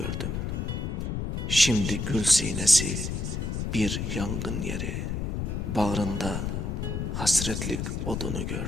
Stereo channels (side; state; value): left; noise; rumble, 2 dB below the sound